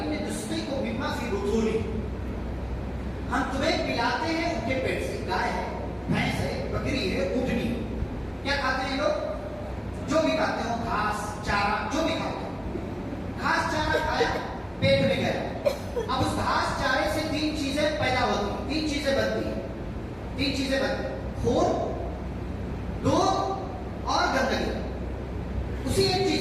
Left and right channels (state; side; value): identical; both; correlation 1.00